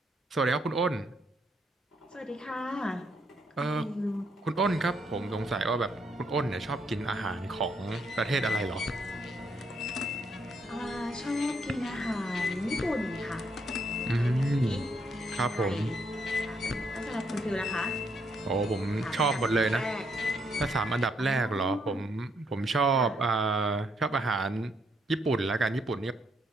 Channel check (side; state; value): both; normal; correlation 0.74